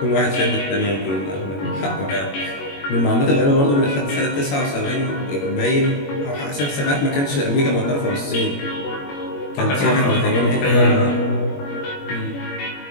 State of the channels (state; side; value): late; right; 21 ms